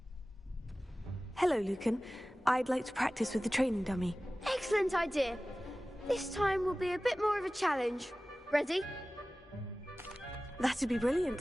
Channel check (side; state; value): both; normal; correlation 0.97